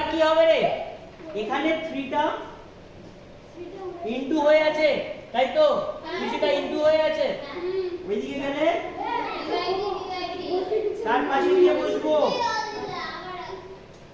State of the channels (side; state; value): both; identical; correlation 1.00